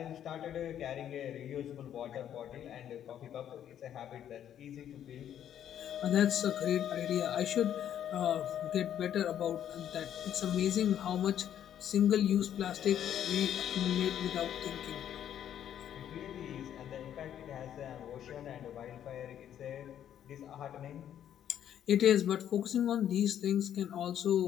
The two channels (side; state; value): right; quieter; 10.2 dB